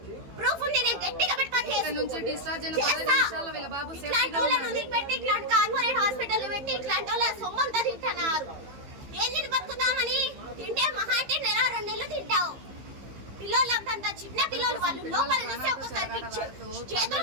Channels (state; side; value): late; left; 15 ms